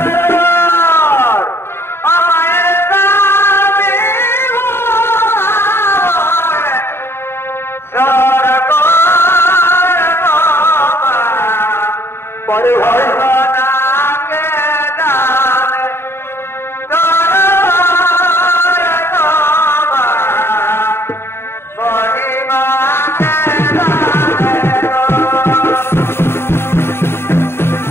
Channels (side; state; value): right; late; 0.12 ms